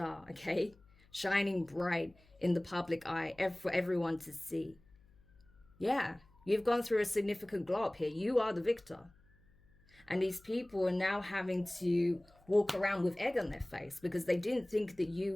okay? Shining bright in the public eye for everyone to see. Yeah, you've gone through a significant glow up here. You are the victor. And these people are now having to walk around with egg on their face because they didn't think that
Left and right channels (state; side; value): noise; left; hum, 29 dB below the sound